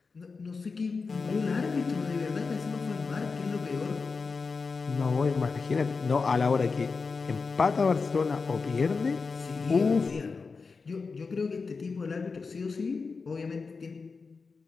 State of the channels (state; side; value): quieter; right; 4.6 dB